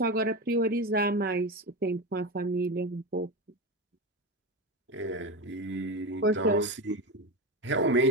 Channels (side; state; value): both; normal; correlation 0.19